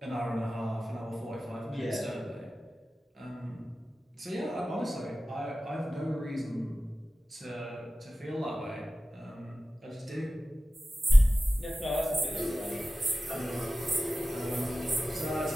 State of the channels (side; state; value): both; normal; correlation 0.95